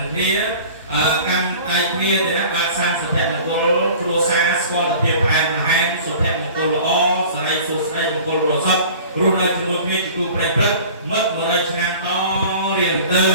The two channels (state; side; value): inverted; both; correlation -0.43